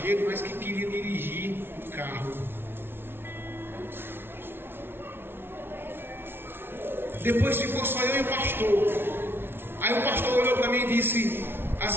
mas que queria dirigir o carro. Depois ficou só eu e o pastor. Aí o pastor olhou para mim e disse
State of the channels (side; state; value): left; late; 0.11 ms